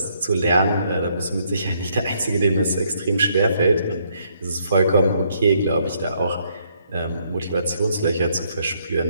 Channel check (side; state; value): both; inverted; correlation -0.71